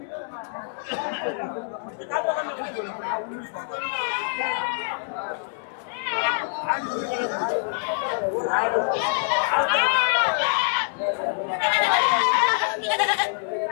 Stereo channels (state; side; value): silent; right; digital silence